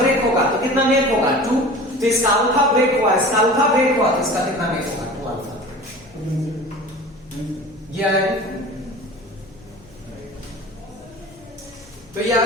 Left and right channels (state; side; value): noise; left; hum, 25 dB below the sound